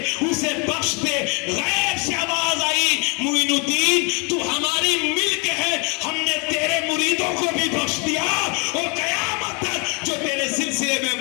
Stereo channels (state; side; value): quieter; right; 32.8 dB